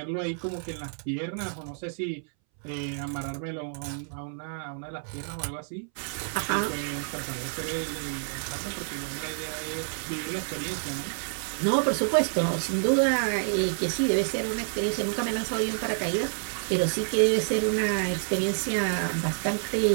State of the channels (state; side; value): silent; left; 59 dB below the other